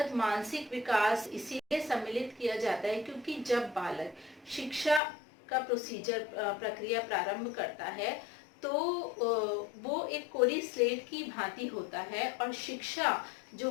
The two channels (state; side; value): drops out; right; at 5.0 s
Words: मानसिक विकास इसीलिए सम्मिलित किया जाता है क्योंकि जब बालक शिक्षा का प्रक्रिया प्रारंभ करता है तो वो एक कोरी स्लेट की भांति होता है और शिक्षा